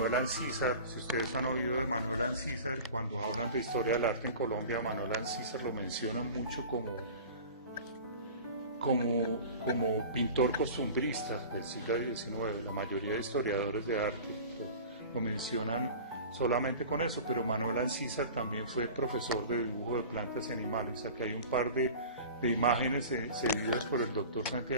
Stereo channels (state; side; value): inverted; both; correlation -0.38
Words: Ancísar. Si ustedes han oído de Manuel Ancísar, cuando hablan de historia del arte en Colombia, Manuel Ancísar lo mencionan mucho como pintor costumbrista del siglo XIX. La mayoría de historiadores de arte lo mencionan solamente con eso, pero Manuel Ancísar también fue profesor de dibujo de plantas y animales. Aquí hay un par de imágenes cedidas por el doctor